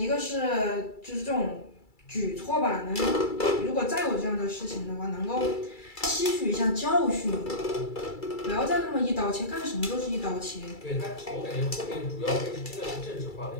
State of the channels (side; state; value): right; late; 2.3 ms